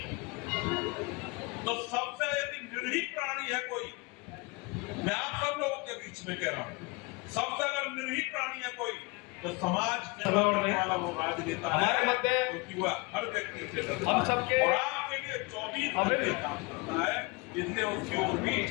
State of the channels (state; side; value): quieter; right; 27.2 dB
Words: तो सबसे यदि निर्भीक प्राणी है कोई, मैं आप सब लोगों के बीच में कह रहा हूँ, सबसे अगर निर्भीक प्राणी है कोई तो समाज सेवा करने वाला वो राजनेता है, क्योंकि वह हर व्यक्ति से डरता है और आपके लिए 24 घंटे काम करता है। इसलिए उसकी ओर भी